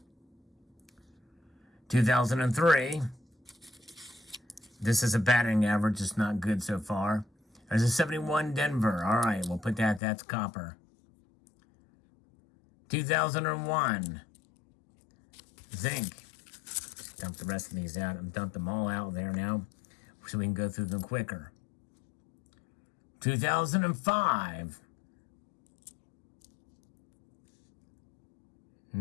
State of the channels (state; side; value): drops out; right; at 10.0 s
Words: 2003. This is a batting average. It's not good so far. There's a 71 Denver. All right, we'll put that. That's copper. 2001. Zinc. Dump the rest of these out. I've dumped them all out there now so we can go through them quicker. 2005.